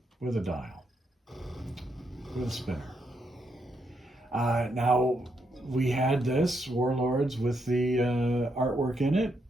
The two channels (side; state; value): both; normal; correlation 0.79